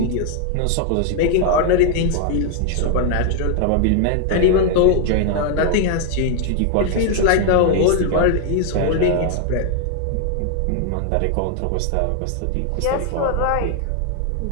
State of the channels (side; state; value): both; different; correlation 0.00